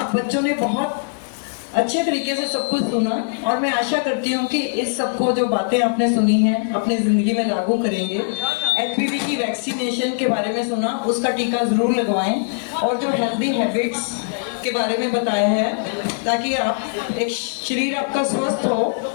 बच्चों ने बहुत अच्छे तरीके से सब कुछ सुना, और मैं आशा करती हूँ कि इस सबको जो बातें आपने सुनी हैं अपनी ज़िंदगी में लागू करेंगे। HPV की वैक्सीनेशन के बारे में सुना, उसका टीका ज़रूर लगवाएं, और जो हेल्दी हैबिट्स के बारे में बताया है, ताकि आप एक शरीर आपका स्वस्थ हो,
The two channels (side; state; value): right; silent; digital silence